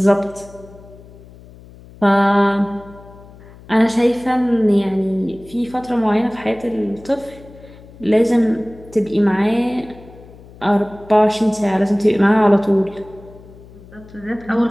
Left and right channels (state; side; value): noise; left; hum, 21 dB below the sound